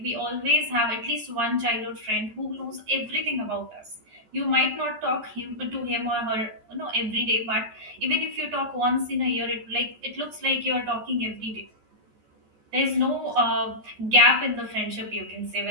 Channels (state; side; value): late; left; 14 ms